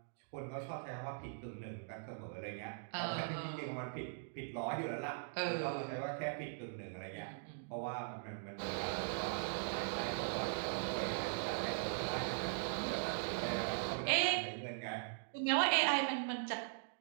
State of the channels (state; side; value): silent; left; digital silence